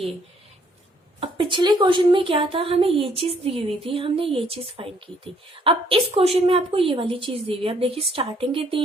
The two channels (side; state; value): both; normal; correlation 0.66